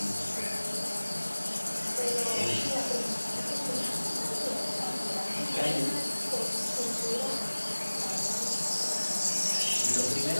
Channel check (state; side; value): inverted; both; correlation -1.00